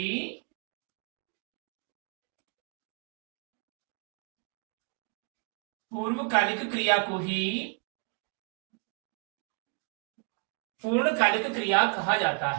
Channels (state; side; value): quieter; left; 38.0 dB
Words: पूर्णकालिक क्रिया कहा जाता